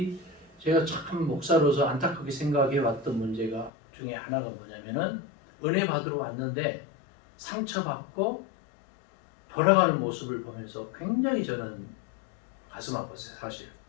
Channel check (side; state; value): right; drops out; at 3.7 s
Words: 제가 참 목사로서 안타깝게 생각해 왔던 문제가 중에 하나가 뭐냐면은 은혜 받으러 왔는데 상처받고 돌아가는 모습을 보면서 굉장히 저는 가슴 아팠어요. 사실